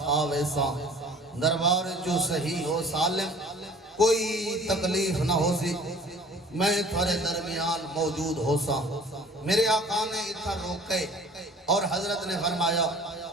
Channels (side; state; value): both; normal; correlation 0.49